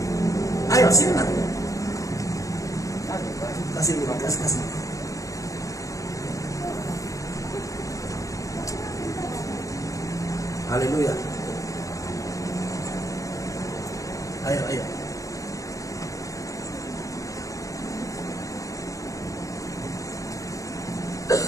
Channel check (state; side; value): late; right; 0.16 ms